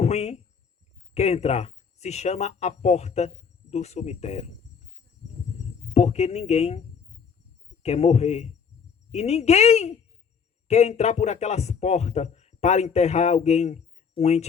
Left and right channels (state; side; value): quieter; right; 6.4 dB